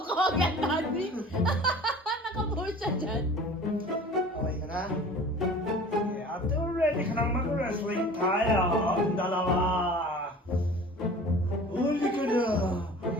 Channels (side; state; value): both; normal; correlation 0.42